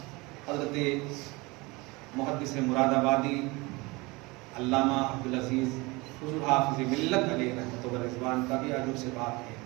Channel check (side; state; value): left; quieter; 24.4 dB